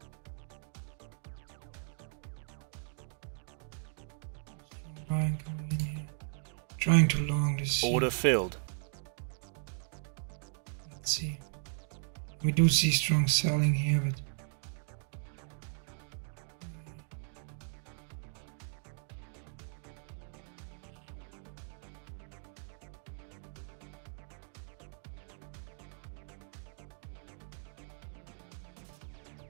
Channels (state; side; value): silent; left; digital silence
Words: Buying coming in here. Trying to long this. Order filled. Let's see. We do see strong selling here, but